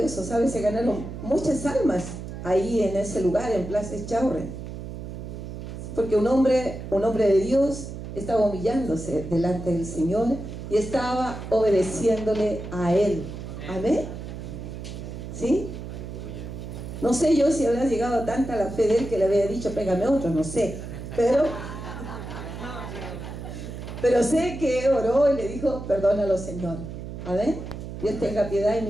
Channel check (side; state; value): right; noise; hum, 9 dB below the sound